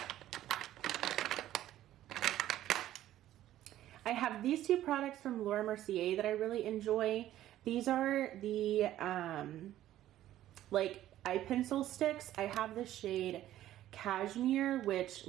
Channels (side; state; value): left; quieter; 13.3 dB